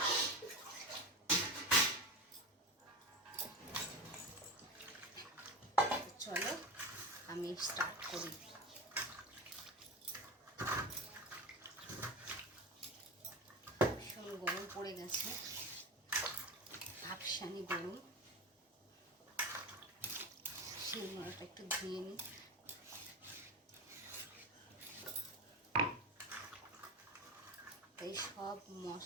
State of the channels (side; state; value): both; normal; correlation 0.24